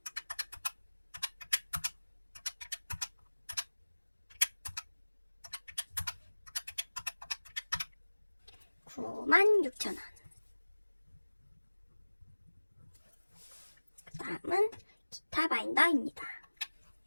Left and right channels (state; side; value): inverted; both; correlation -1.00